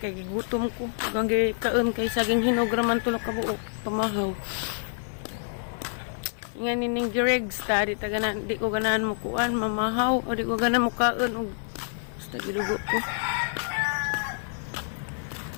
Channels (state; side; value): silent; right; 55 dB below the other